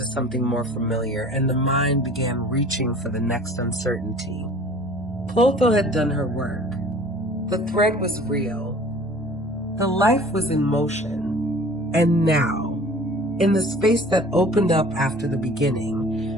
something more familiar and the mind began reaching for the next uncertainty. Clotho had done her work. The thread was real. The life was in motion. And now, in the space that opened up after the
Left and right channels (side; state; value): both; normal; correlation 0.47